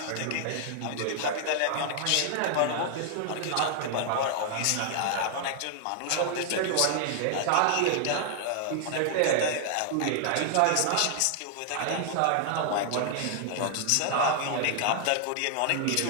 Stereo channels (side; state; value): both; different; correlation 0.00